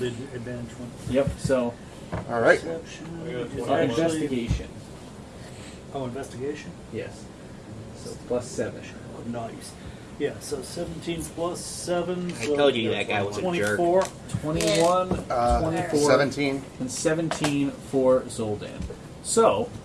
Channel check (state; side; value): identical; both; correlation 1.00